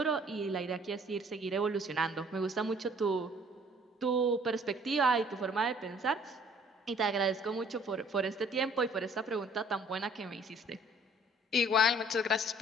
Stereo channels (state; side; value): normal; both; correlation 0.57